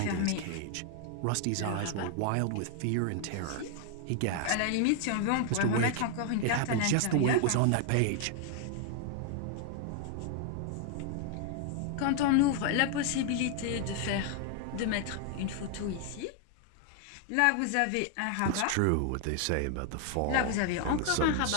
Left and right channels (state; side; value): different; both; correlation 0.00